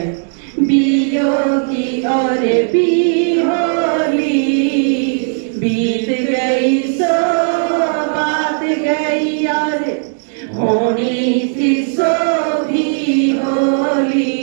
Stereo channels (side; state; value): left; silent; digital silence